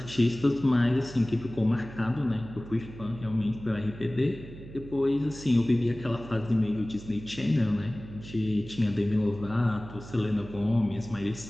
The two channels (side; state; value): right; noise; hum, 15 dB below the sound